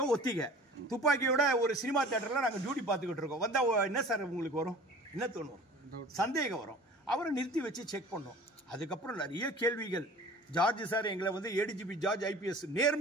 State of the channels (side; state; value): both; normal; correlation 0.44